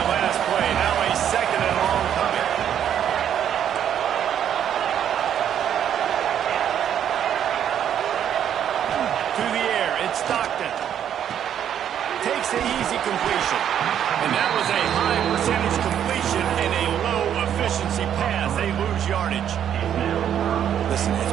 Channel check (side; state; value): left; quieter; 9.6 dB